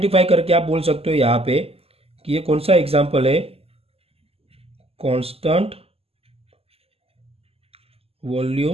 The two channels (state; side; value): late; left; 0.29 ms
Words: करके आप बोल सकते हो यहाँ पे कि ये कौन सा एग्जाम्पल है? Constant